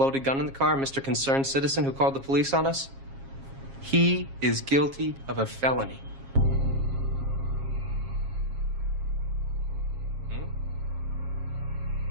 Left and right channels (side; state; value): left; late; 7.4 ms